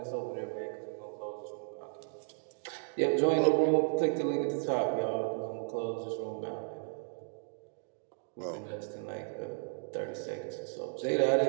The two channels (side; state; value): left; silent; digital silence